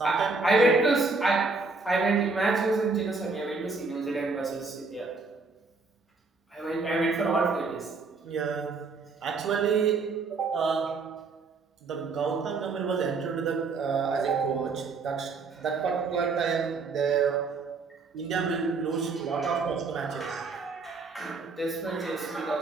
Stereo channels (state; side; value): quieter; left; 4.2 dB